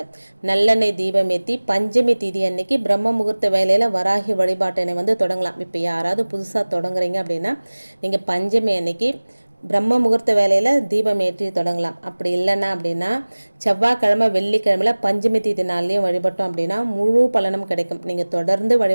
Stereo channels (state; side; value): inverted; both; correlation -1.00